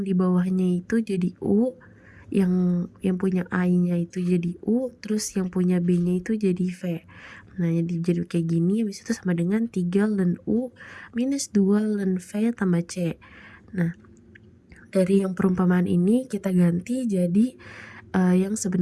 di bawahnya itu jadi U, yang punya A-nya itu jadi U, terus yang punya B-nya itu jadi V. Nah, jadi kayak gini, habis itu sama dengan 3 ln U minus 2 ln V tambah C. Nah, dari yang perumpamaan ini kita ganti jadi yang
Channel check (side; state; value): both; identical; correlation 1.00